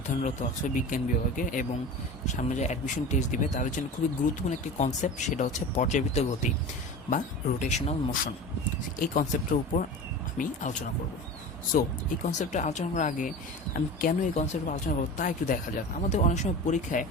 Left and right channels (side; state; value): both; normal; correlation 0.33